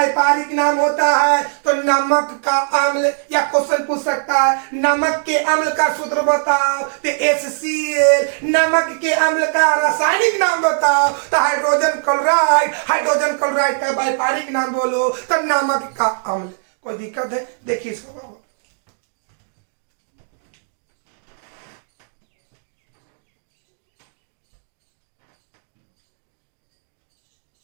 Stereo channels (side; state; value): left; silent; digital silence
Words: नाम होता है तो नमक का अम्ल। या क्वेश्चन पूछ सकता है नमक के अम्ल का सूत्र बताओ, तो HCl। नमक के अम्ल का रासायनिक नाम बताओ तो हाइड्रोजन क्लोराइड, हाइड्रोजन क्लोराइड का व्यापारिक नाम बोलो तो नमक का अम्ल। कोई दिक्कत है? देखिए इसको बाबू,